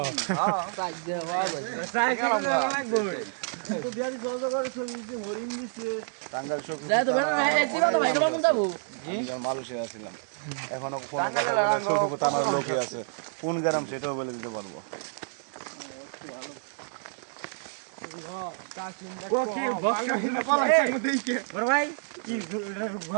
সাইড দে হবে সাইড লাগবে তো বিয়ারি সহজ করে ছবি দিতে হরিণ দিছে টাঙ্গাইল সখীপুর যাই তো বেন এই চিলা তো ভাই কেমন যাবো আমি মালয়েশিয়া ছিলাম এখনো ফোন সখীপুর থানার লোকে আছে কোন গ্রাম সেটাও বলে দিতে পারবো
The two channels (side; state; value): left; silent; digital silence